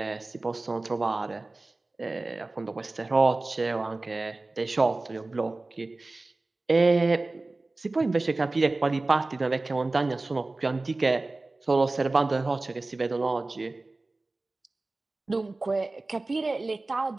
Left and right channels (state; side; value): quieter; left; 3.2 dB